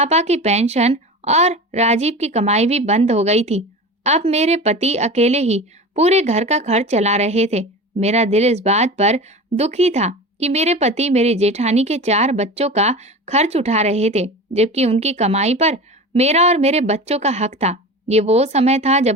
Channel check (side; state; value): both; normal; correlation 0.31